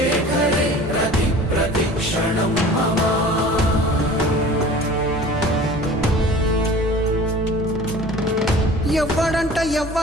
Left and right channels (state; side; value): normal; both; correlation 0.43